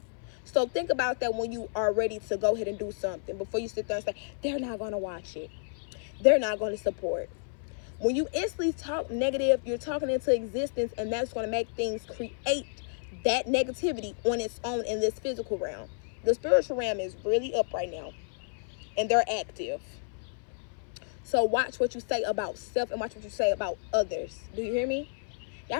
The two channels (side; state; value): right; silent; 57 dB below the other